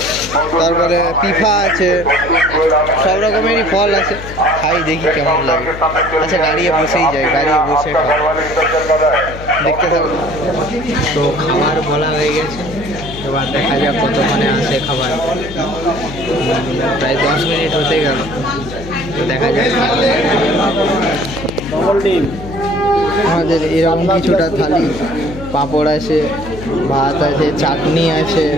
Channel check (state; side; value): noise; left; hum, 12 dB below the sound